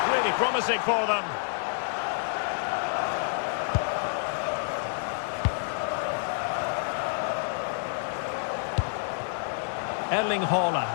really promising for them. Erling Haaland.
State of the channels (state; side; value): silent; right; digital silence